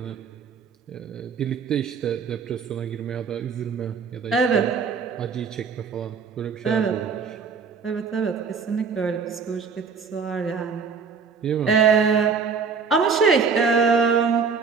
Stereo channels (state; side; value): quieter; left; 5.6 dB